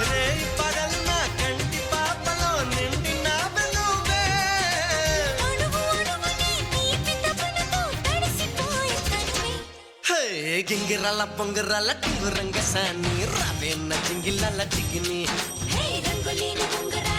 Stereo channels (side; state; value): both; identical; correlation 1.00